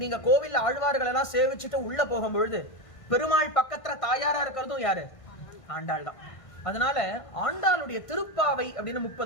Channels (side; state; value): right; late; 1.5 ms